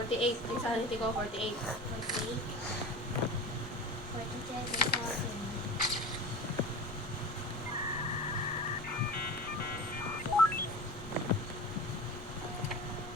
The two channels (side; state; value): both; normal; correlation 0.32